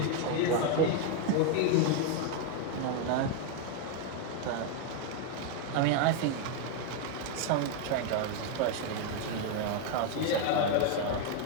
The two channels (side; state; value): both; different; correlation 0.01